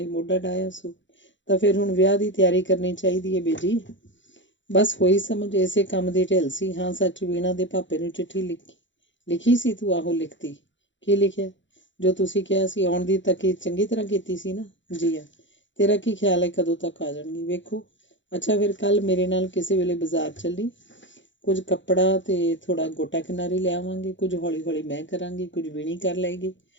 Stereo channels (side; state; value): right; late; 0.54 ms